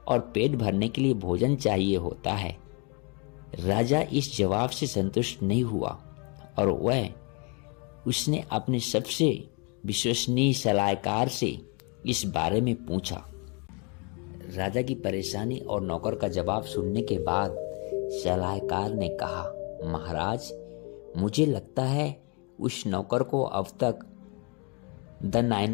और पेट भरने के लिए भोजन चाहिए होता है। राजा इस जवाब से संतुष्ट नहीं हुआ और उसने अपने सबसे विश्वसनीय सलाहकार से इस बारे में पूछा। राजा की परेशानी और नौकर का जवाब सुनने के बाद सलाहकार ने कहा, महाराज, मुझे लगता है उस नौकर को अब तक द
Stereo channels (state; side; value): quieter; right; 33.1 dB